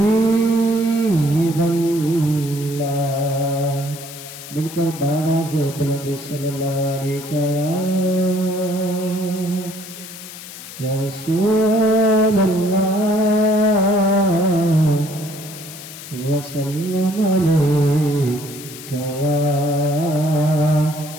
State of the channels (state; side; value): noise; left; hiss, 14 dB below the sound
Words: मिलकर बावाज़ बुलंद सल्लल्लाहु अलैका या रसूलल्लाह व सल्लम अलैका या